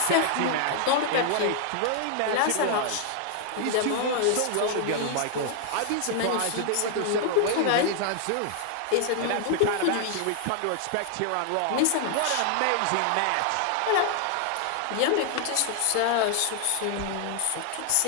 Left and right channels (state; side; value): different; both; correlation 0.00